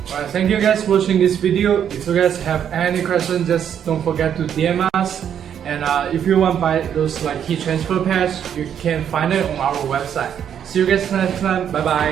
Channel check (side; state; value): left; quieter; 8.9 dB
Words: Alright, thank you guys for watching this video. If you guys have any questions, just don't forget to DM us. And if you want to buy those like heat transfer patch, you can find it on our website. See you guys next time. Bye